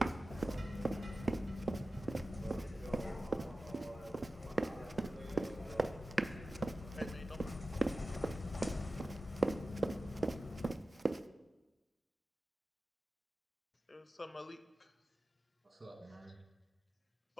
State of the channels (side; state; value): both; normal; correlation 0.94